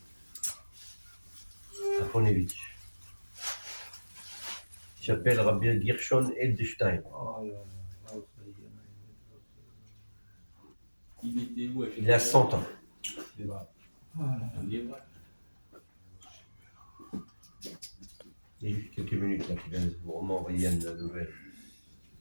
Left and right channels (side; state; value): both; inverted; correlation -1.00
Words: à Ponevitch. Il s'appelle Rabbi Gershon Edelstein. Il a 100 ans. Il y a juste quelques minutes là, qui vient de vous m'envoyer une nouvelle.